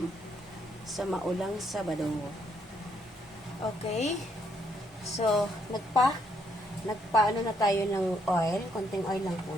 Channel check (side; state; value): both; normal; correlation 0.72